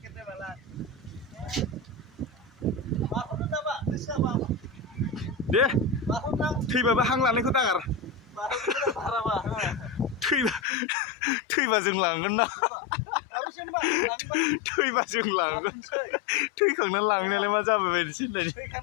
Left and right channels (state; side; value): drops out; right; at 10.6 s